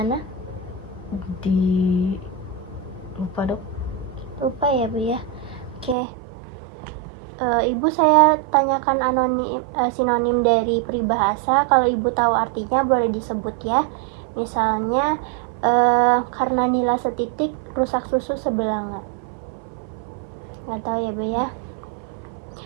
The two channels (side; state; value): left; drops out; at 6.0 s